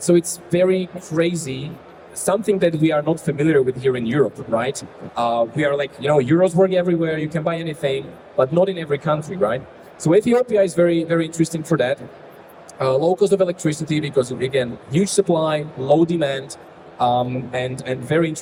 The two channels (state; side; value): identical; both; correlation 1.00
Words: So it's very crazy, something that we are not familiar with here in Europe, right? We are like, euros work everywhere, you can buy anything, but not in every country, right? So Ethiopia is very, very interesting for that. Low cost of electricity because, again, huge supply, low demand, and very